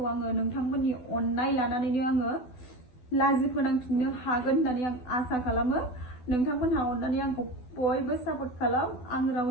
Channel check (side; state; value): right; late; 12 ms